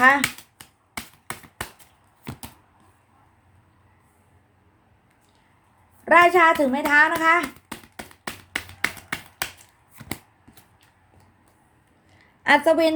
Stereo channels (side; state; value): both; identical; correlation 1.00